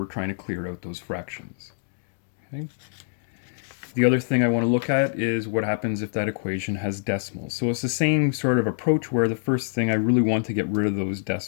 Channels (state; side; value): silent; right; digital silence